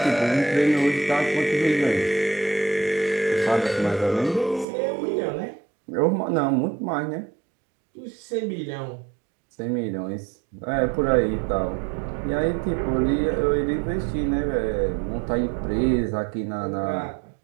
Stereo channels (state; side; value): drops out; left; at 4.7 s